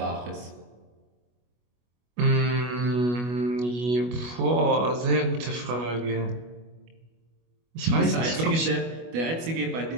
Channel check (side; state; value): left; late; 25 ms